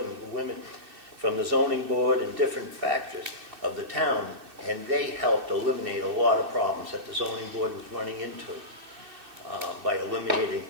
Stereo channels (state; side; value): late; left; 2.6 ms